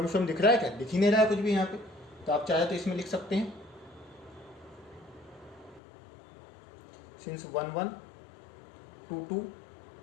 स्वयं दिख रहा है क्या? दिख ही नहीं रहा है कुछ भी यहाँ पे, तो आप चाहे तो इसमें लिख सकते हैं since 1 1 2 2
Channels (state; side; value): drops out; right; at 5.8 s